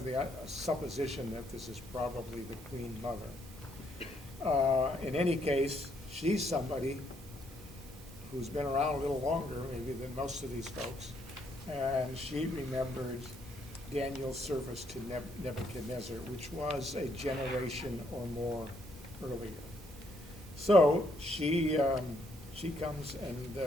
the supposition that this is probably the queen mother. In any case, she's somebody who's been around a little longer maybe than most of these folks, and she remembered Daniel's service to Nebuchadnezzar, which was a generation or more earlier. So she comes and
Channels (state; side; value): normal; both; correlation 0.72